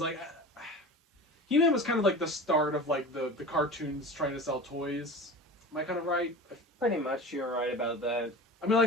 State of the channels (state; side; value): normal; both; correlation 0.34